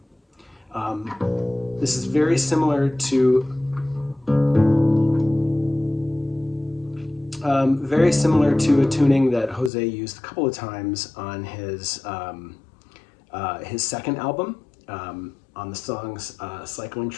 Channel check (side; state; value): right; drops out; at 9.7 s